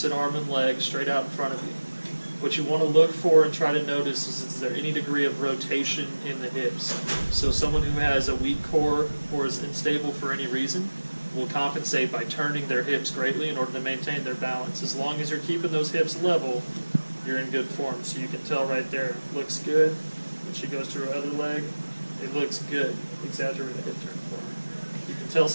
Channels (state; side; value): inverted; both; correlation -1.00